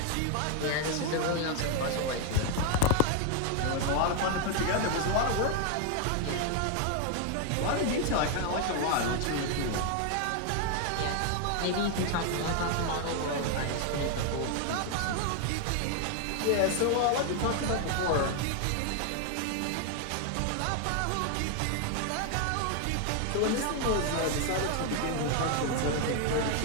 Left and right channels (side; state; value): both; different; correlation 0.00